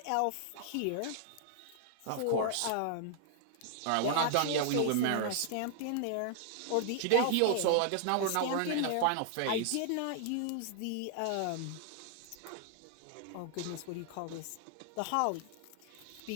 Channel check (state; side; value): different; both; correlation 0.00